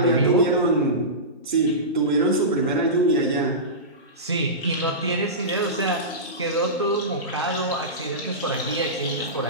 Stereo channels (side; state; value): both; normal; correlation -0.20